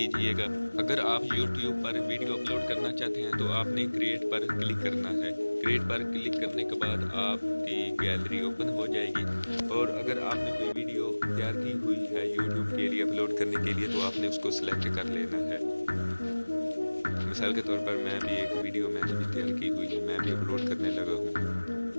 अगर आप YouTube पर वीडियो अपलोड करना चाहते हैं तो आपने क्रिएट पर क्लिक करना है। क्रिएट पर क्लिक करने के बाद आपकी गैलरी ओपन हो जाएगी और अगर आपने कोई वीडियो तैयार की हुई है YouTube के लिए अपलोड करने के लिए तो आपने उसको सिलेक्ट कर लेना है। मिसाल के तौर पर मैं भी एक वीडियो मैंने भी तैयार की हुई है, मैं भी अपलोड करने लगा हूँ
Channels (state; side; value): inverted; both; correlation -1.00